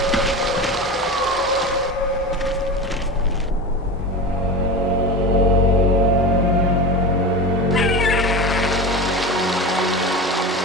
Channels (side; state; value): both; normal; correlation 0.27